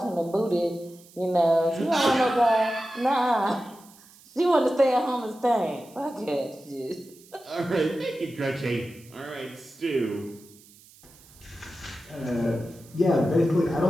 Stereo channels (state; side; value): noise; right; hiss, 25 dB below the sound